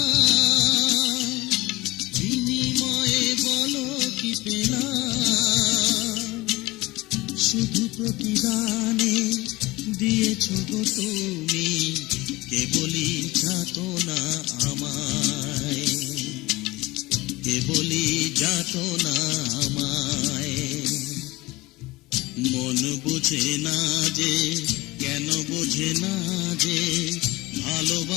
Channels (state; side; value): quieter; right; 20.6 dB